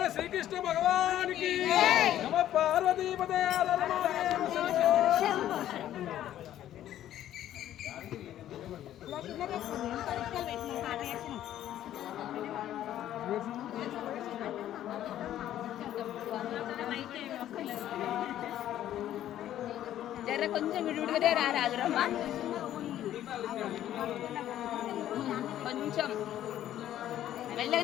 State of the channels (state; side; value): quieter; right; 12.1 dB